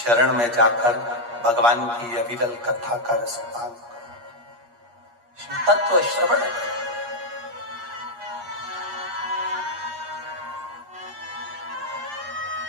में जाकर भगवान की अविरल कथा का रसपान करो। शिव तत्व श्रवण,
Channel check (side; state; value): left; late; 8.4 ms